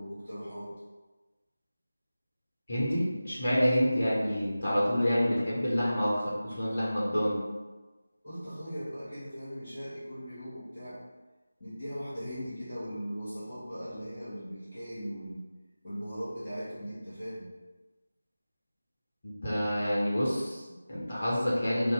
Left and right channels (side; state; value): both; inverted; correlation -0.96